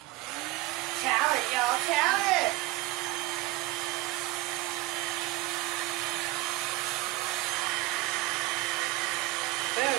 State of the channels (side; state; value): left; quieter; 19.0 dB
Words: Talent, y'all, talent. Boom,